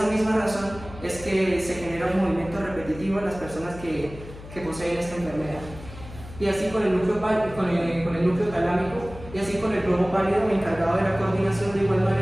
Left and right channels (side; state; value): left; noise; hum, 15 dB below the sound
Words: misma razón es que se genera un movimiento repetitivo en las personas que poseen esta enfermedad. y así con el núcleo, con el núcleo talámico, y así con el globo pálido encargado de la coordinación de igual